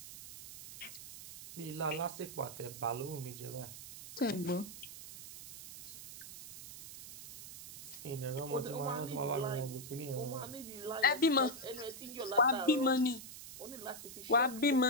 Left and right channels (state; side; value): noise; right; hiss, 12 dB below the sound